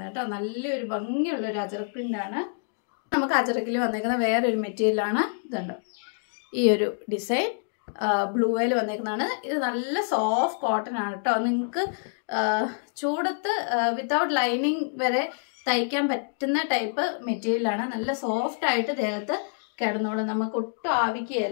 കേട്ടോ. നല്ലൊരു ഭംഗിയുള്ളൊരു അജറക് പ്രിൻ്റാണ്. നമുക്ക് അജറക്കിൽ വന്നേക്കുന്ന വേറൊരു മെറ്റീരിയലാണ്. ഇതുണ്ട്, ഈ ഒരു ഡിസൈൻ ബ്ലൂയിൽ വന്നേക്കുന്നതാണ്. ഇത് നല്ല സോഫ്റ്റ് കോട്ടൺ ആണ് കേട്ടോ. നിങ്ങൾക്ക് ചൂടത്ത് വിത്തൗട്ട് ലൈനിങ് വരെ തയ്ക്കാൻ പറ്റുന്ന ടൈപ്പ് മെറ്റീരിയലാണ്. നല്ല സോഫ്റ്റ് ആയിട്ട് ദേഹത്ത് കിടന്നോളും, നമുക്ക് ഒട്ടും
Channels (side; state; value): right; silent; digital silence